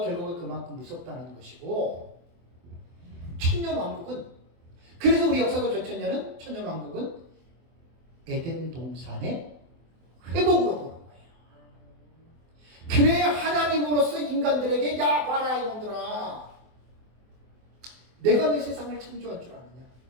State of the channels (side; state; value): left; late; 24 ms